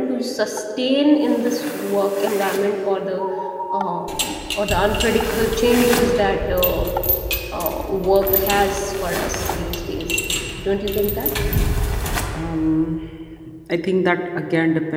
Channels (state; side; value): identical; both; correlation 1.00